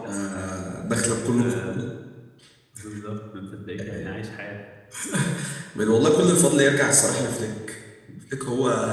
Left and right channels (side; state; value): both; identical; correlation 1.00